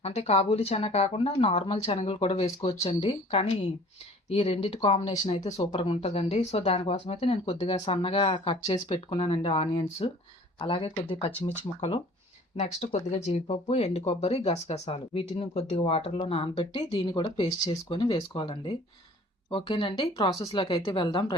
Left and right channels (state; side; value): normal; both; correlation 0.50